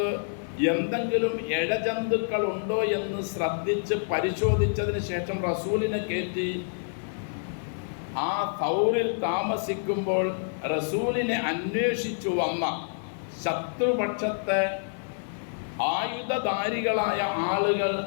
എന്തെങ്കിലും ഇഴജന്തുക്കൾ ഉണ്ടോ എന്ന് ശ്രദ്ധിച്ച് പരിശോധിച്ചതിന് ശേഷം റസൂലിനെ കയറ്റി ആ സൗറിൽ താമസിക്കുമ്പോൾ റസൂലിനെ അന്വേഷിച്ചു വന്ന ശത്രുപക്ഷത്തെ ആയുധധാരികളായ ആളുകൾ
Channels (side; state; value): right; silent; 60 dB below the other